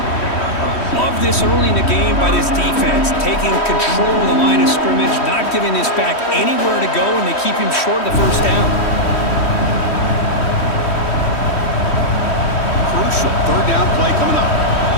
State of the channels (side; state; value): right; late; 3.1 ms